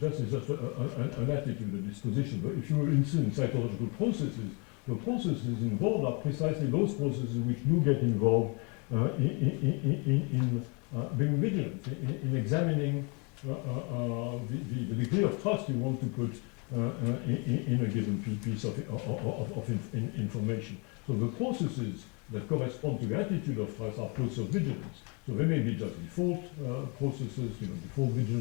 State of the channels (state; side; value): quieter; right; 32.8 dB